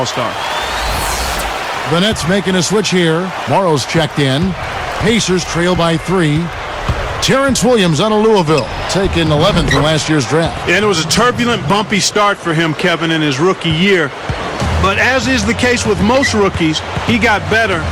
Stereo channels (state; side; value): identical; both; correlation 1.00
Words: The Nets making a switch here. Morrow's checked in. Pacers trail by 3. Terrence Williams out of Louisville, taken 11th in last year's draft. And it was a turbulent, bumpy start for him, Kevin, in his rookie year. But as is the case with most rookies, he got better